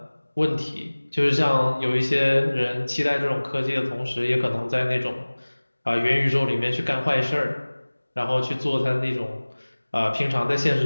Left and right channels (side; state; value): both; inverted; correlation -1.00